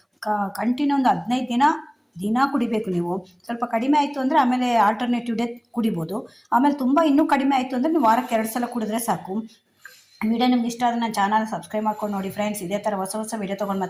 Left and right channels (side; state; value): both; identical; correlation 1.00